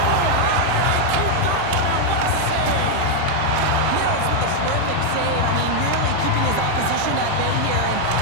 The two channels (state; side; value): different; both; correlation 0.00